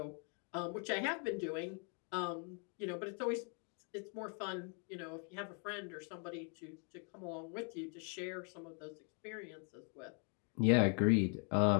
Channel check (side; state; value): right; quieter; 38.9 dB